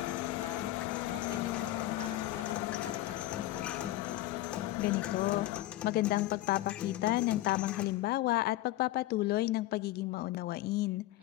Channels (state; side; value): quieter; right; 15.9 dB